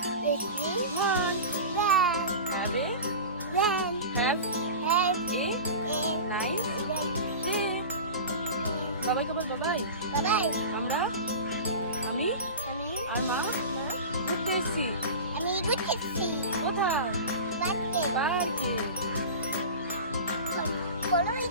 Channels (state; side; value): inverted; both; correlation -0.31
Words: Everyone. One Run. Have a Run. Have Have a a nice day. Day. বাবাইকে বল Babai. Bye bye. আমরা আমি আর মা ঘুরতে এসেছি। আমি ঘুরতেছি। কোথায়? পার্কে। পার্কে। বলো